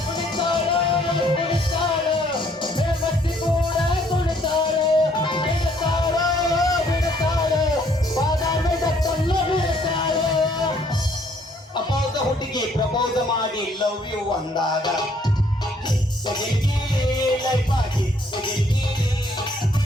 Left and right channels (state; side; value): normal; both; correlation 0.64